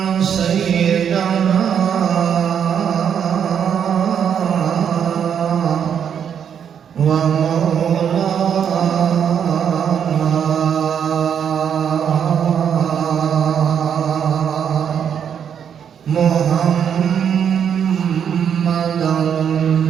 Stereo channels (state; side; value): quieter; left; 8.1 dB